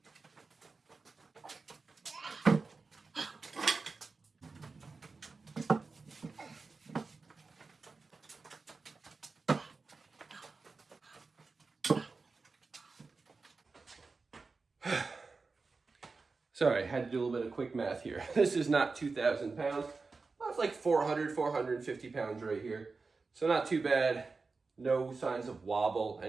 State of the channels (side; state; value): left; quieter; 4.2 dB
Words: Sorry, I had to do a little bit of quick math here. This is not 2,000 pounds. Well, it's like 400, 450 pounds right here. So not too bad. No signs of wobble,